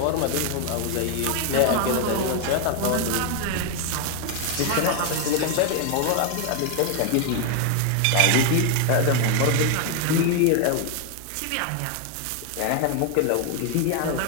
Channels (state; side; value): different; both; correlation 0.01